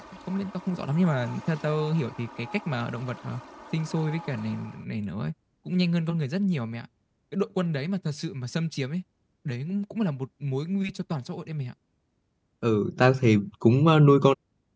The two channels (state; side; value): identical; both; correlation 1.00